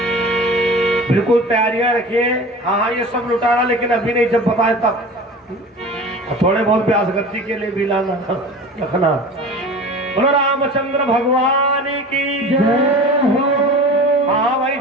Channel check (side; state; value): both; normal; correlation 0.37